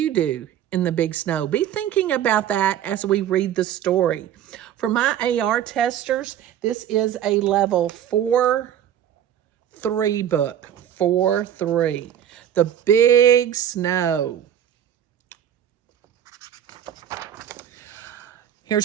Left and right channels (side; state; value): left; quieter; 10.3 dB